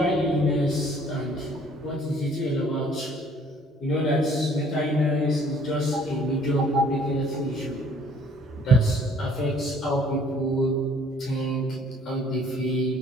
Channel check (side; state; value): both; normal; correlation 0.58